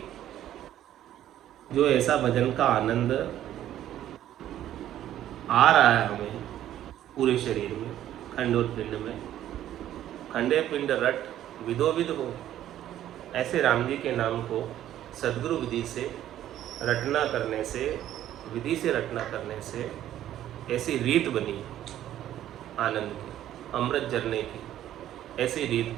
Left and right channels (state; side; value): quieter; left; 12.1 dB